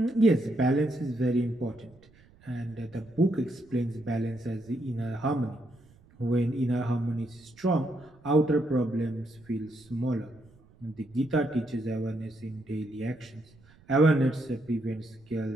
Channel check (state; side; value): noise; right; rumble, 27 dB below the sound